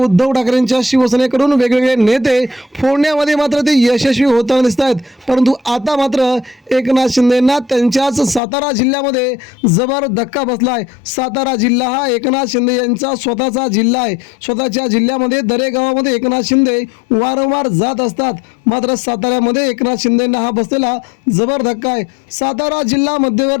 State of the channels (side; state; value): right; drops out; at 8.4 s